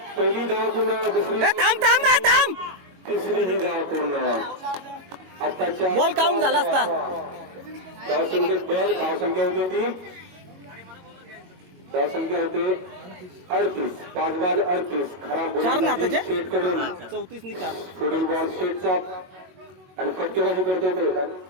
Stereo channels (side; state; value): left; late; 22 ms